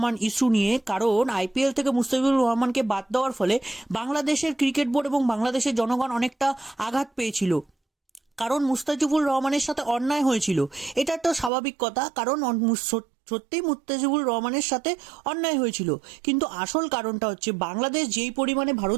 ইস্যু নিয়ে। কারণ আইপিএল থেকে মুস্তাফিজুর রহমানকে বাদ দেওয়ার ফলে বাংলাদেশের ক্রিকেট বোর্ড এবং বাংলাদেশের জনগণ অনেকটা আঘাত পেয়েছিল, কারণ মুস্তাফিজুর রহমানের সাথে অন্যায় হয়েছিল। এটা একটা স্বাভাবিক কথা, কারণ সত্যিই মুস্তাফিজুর রহমানের সাথে অন্যায় হয়েছিল। কিন্তু আসল কারণটা হচ্ছে বাংলাদেশ যেই পরিমাণে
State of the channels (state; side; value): drops out; left; at 11.5 s